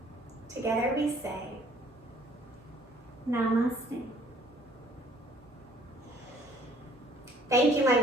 Together we say, Namaste. Thank you, my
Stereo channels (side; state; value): both; normal; correlation 0.58